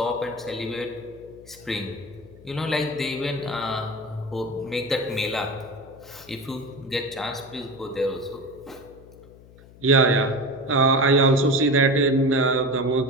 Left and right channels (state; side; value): noise; left; hum, 22 dB below the sound